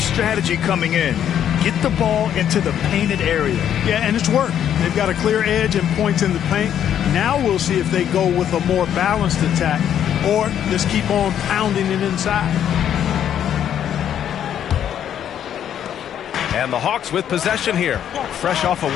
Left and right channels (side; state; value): right; quieter; 9.8 dB